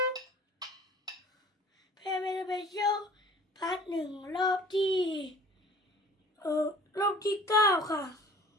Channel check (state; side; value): normal; both; correlation 0.48